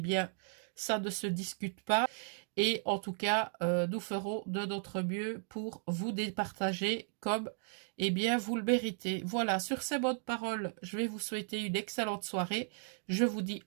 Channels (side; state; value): left; silent; 54 dB below the other